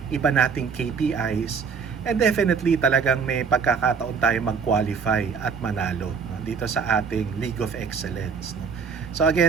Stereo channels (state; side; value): quieter; left; 5.9 dB